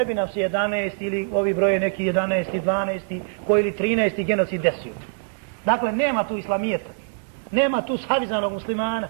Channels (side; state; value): left; silent; digital silence